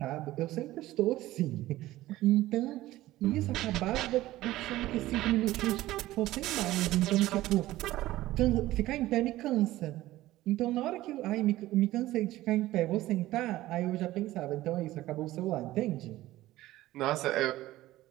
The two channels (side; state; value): left; quieter; 16.2 dB